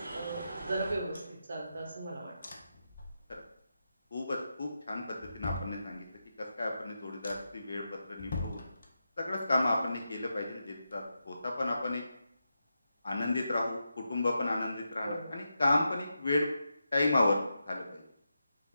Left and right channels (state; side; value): inverted; both; correlation -0.87